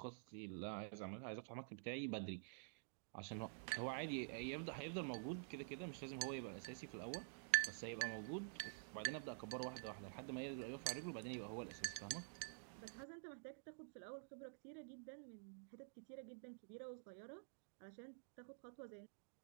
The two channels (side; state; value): left; silent; digital silence